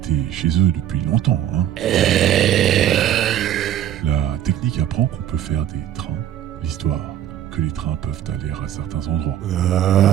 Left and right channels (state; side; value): quieter; left; 11.3 dB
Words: chez eux depuis longtemps. La technique apprend qu'on peut faire des trains, l'histoire, que les trains peuvent aller à certains endroits.